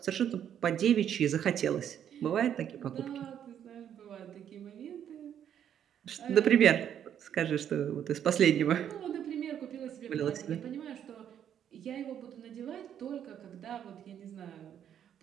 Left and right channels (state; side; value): quieter; left; 9.5 dB